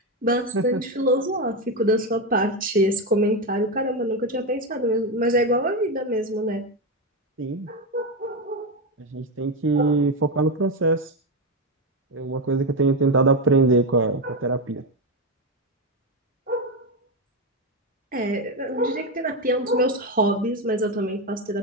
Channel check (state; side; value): normal; both; correlation 0.11